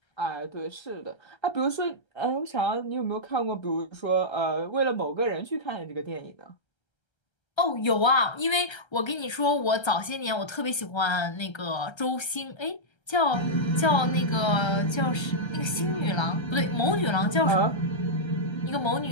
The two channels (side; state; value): right; late; 1.3 ms